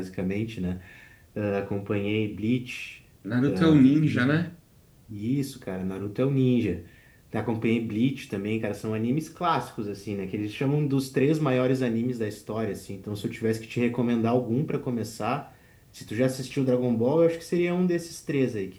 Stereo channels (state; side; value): identical; both; correlation 1.00